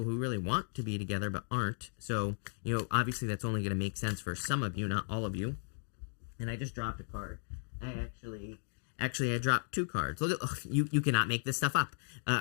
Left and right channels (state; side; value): silent; right; digital silence